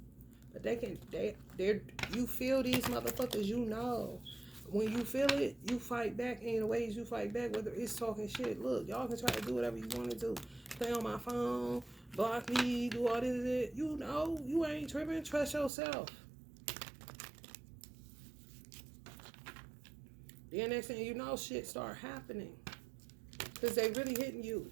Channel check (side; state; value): left; drops out; at 15.7 s